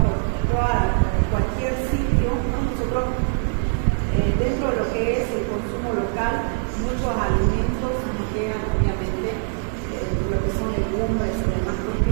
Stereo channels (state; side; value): silent; left; 64 dB below the other